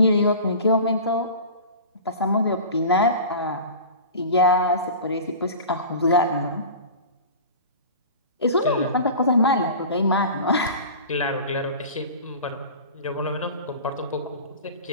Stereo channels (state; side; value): inverted; both; correlation -0.36